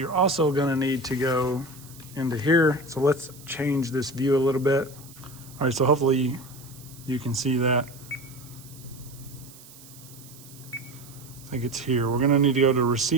also gonna need to go into here. So let's change this view a little bit. All right, so hopefully you can see that. I think it's here. We're gonna need to go to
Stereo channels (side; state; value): right; noise; hiss, 20 dB below the sound